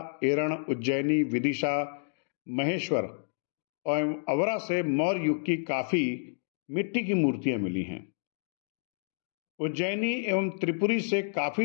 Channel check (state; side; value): silent; right; digital silence